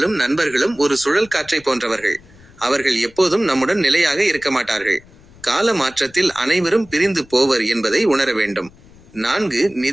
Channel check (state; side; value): noise; left; rumble, 25 dB below the sound